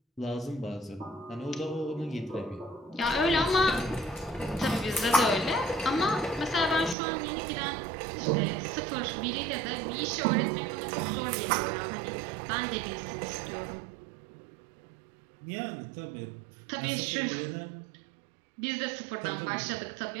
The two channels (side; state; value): left; drops out; at 7.0 s